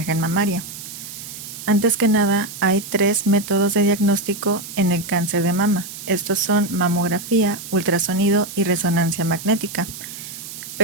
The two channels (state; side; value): noise; right; hiss, 11 dB below the sound